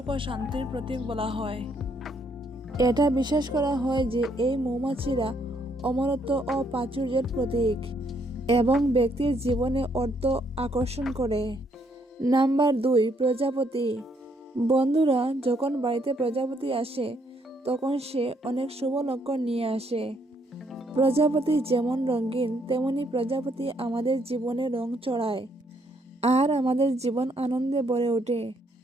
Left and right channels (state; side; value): normal; both; correlation 0.71